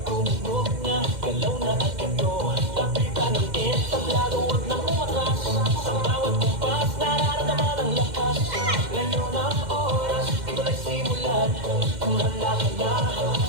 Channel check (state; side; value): late; left; 2.1 ms